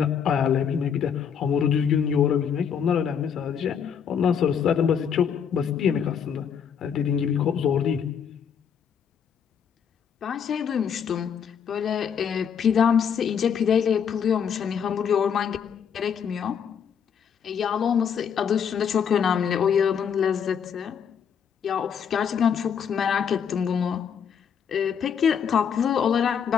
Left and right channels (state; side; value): quieter; right; 7.5 dB